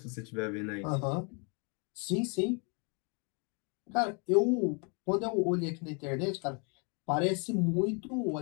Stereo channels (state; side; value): quieter; right; 35.4 dB